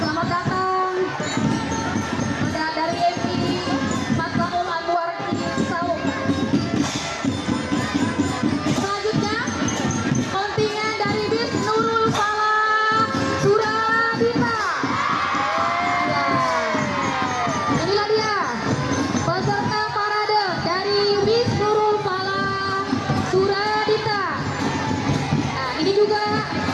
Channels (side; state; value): both; identical; correlation 1.00